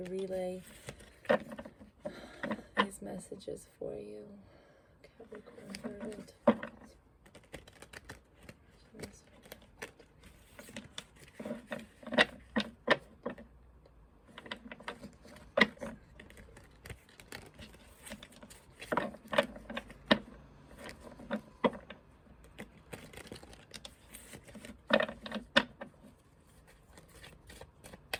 relay these messages for you. Capricorn, Virgo.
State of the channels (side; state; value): both; identical; correlation 1.00